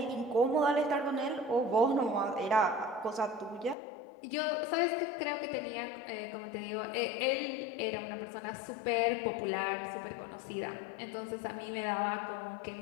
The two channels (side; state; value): right; drops out; at 3.8 s